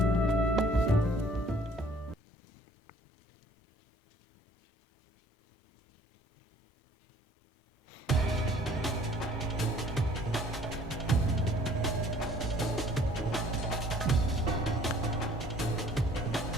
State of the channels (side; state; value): both; normal; correlation 0.56